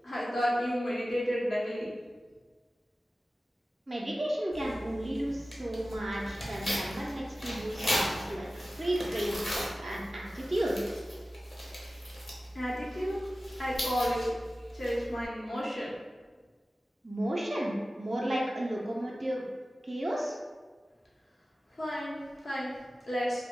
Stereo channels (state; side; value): normal; both; correlation 0.96